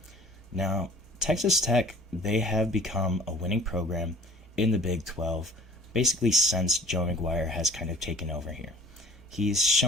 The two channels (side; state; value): both; normal; correlation 0.48